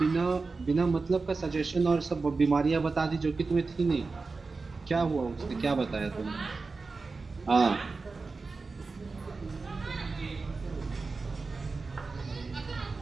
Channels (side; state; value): left; quieter; 4.1 dB